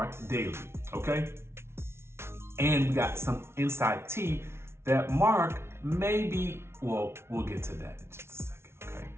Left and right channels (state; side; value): late; left; 0.12 ms